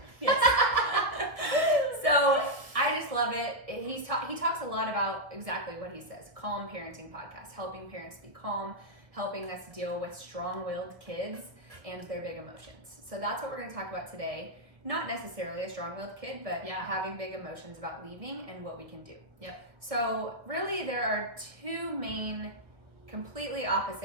Yes. So I just love it. He talks a lot about exactly what he says. Calm Parenting Podcast, helping parents be calm, helping us deal with strong-willed kids and their big emotions. So that's what we're going to talk about today. Not necessarily a strong-willed kid, but having big emotions about leaving and what we can do. Yep. So really there are two main completely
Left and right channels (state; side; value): late; left; 1.5 ms